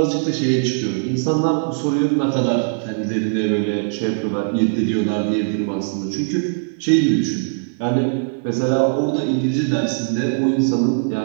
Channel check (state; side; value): silent; left; digital silence